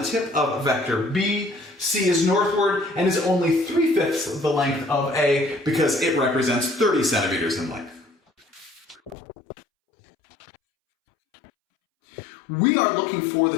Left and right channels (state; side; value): drops out; right; at 9.2 s